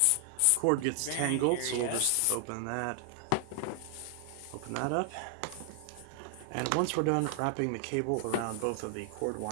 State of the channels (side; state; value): both; different; correlation 0.00